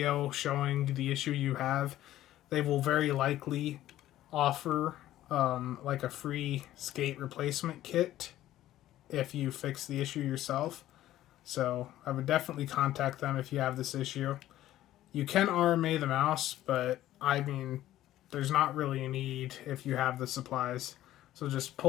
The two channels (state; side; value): quieter; right; 13.9 dB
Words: showing the issue you have, they will very likely offer like a free skate replacement kit if you fix the issue yourself. So I would definitely contact them if you have this issue. You can RMA the mouse, but I mean, there's not really a need if you have the supplies. So just